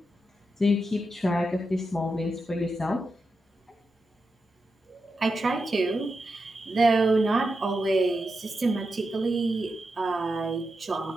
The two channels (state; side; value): normal; both; correlation 0.88